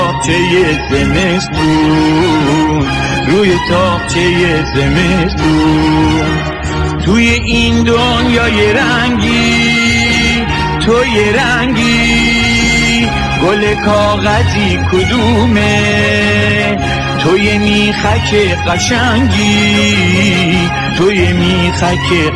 زمستون، روی تاقچه زمستون. توی این دنیای رنگی تو یه رنگی، گل کاغذی کدومه؟ تو یه میخک قشنگی، تو یه میخک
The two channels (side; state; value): both; identical; correlation 1.00